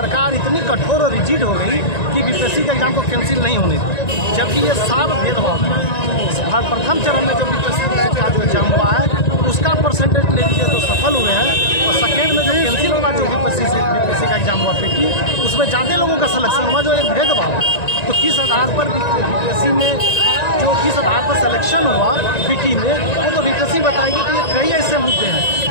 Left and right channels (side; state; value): right; late; 1.9 ms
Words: इतनी कठोर और रिजिड हो गई कि बीपीएससी का एग्जाम को कैंसिल नहीं होने दी, जबकि ये साफ भेदभाव है। प्रथम चरण में जो बीपीएससी का जो एग्जाम हुआ है उसका परसेंटेज ले लीजिए तो सफल हुए हैं, और सेकेंड में जो कैंसिल हुआ जो बीपीएससी का एग्जाम हुआ पीटी, उसमें ज़्यादा लोगों का सिलेक्शन हुआ, जो एक भेदभाव। तो किस आधार पर बीपीएससी में जो किस आधार पर सिलेक्शन हुआ पीटी में, वो तो बीपीएससी बताएगी कि ये कई ऐसे मुद्दे हैं।